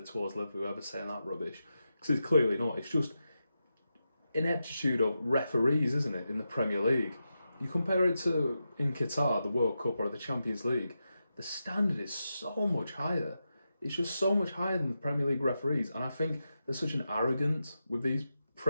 Liverpool, whoever's saying that rubbish. Because it's clearly not. It's just ineptitude of referees, isn't it, in the Premier League? You compare it to in Qatar, the World Cup, or the Champions League, the standard is so much higher. It's just so much higher than the Premier League referees. And I think there's such an arrogance with these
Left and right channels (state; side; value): inverted; both; correlation -0.89